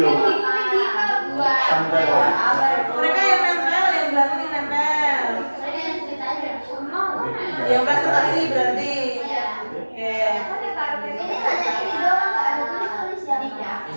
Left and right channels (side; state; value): both; inverted; correlation -1.00